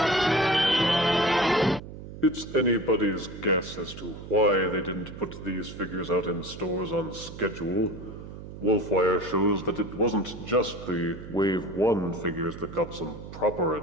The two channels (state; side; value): noise; right; hum, 12 dB below the sound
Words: It's anybody's guess as to why they didn't put these figures out in stores on schedule. Wolfwire shows that it wasn't just the Wave 1 figures that got some proper